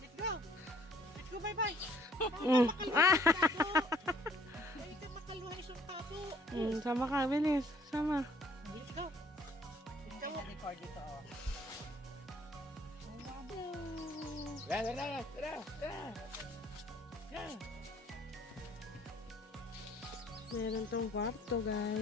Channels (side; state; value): both; normal; correlation 0.59